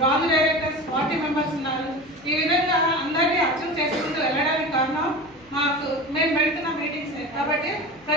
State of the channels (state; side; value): noise; left; hum, 28 dB below the sound